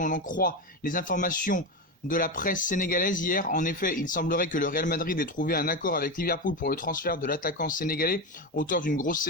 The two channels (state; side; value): normal; both; correlation 0.16